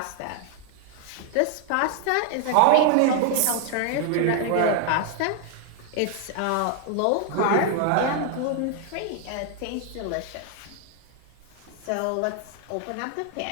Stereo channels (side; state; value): both; different; correlation 0.00